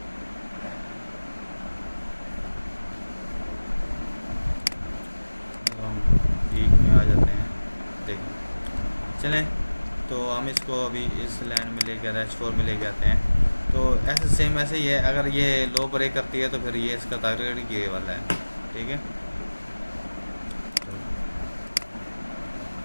हम वीक में आ जाते हैं, देखें चलें, तो हम इसको अभी इस लाइन में लेके H4 में लेके आते हैं। तो ऐसे सेम ऐसे ही है, अगर ये लो ब्रेक करती है तो फिर ये इसका टारगेट ये वाला है, ठीक है।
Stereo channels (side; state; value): both; inverted; correlation -1.00